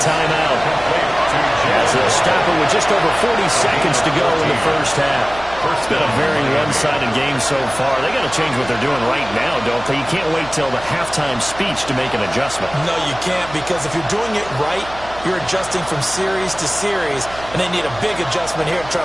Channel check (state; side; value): noise; right; hum, 17 dB below the sound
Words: timeout as they'll stop it with just over 40 seconds to go in the first half. It's been a very one-sided game so far. They got to change what they're doing right now, don't they? You can't wait till the halftime speech to make an adjustment. No, you can't, because if you're doing it right, you're adjusting from series to series, and they need a big adjustment here to try